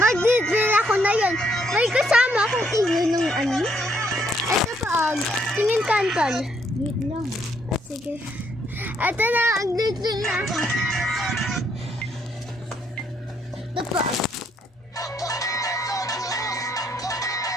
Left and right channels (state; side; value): normal; both; correlation 0.71